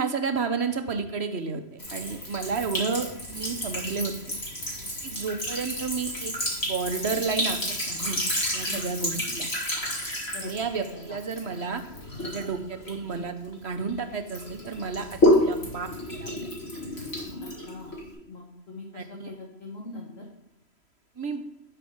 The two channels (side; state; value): right; late; 3.0 ms